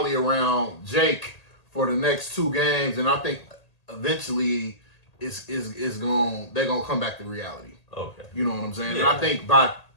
around Jake for the next 2 games, and I think eventually they're going to come back to reality. Okay, you know what I'm saying? Yeah. And I think by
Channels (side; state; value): right; late; 1.8 ms